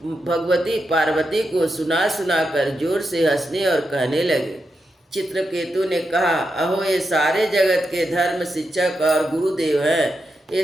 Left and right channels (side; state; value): both; normal; correlation 0.86